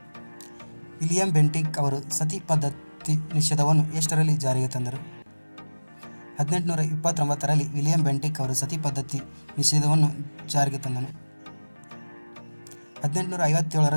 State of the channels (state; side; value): inverted; both; correlation -1.00